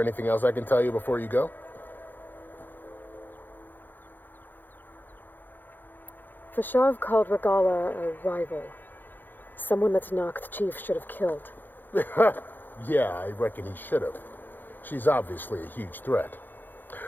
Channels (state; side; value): late; right; 0.090 ms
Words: anything else I can tell you before you go? Fashav called Regala a rival. Someone the Tanakh chief should have killed. Yeah, I reckon he should have. She's obviously a huge threat.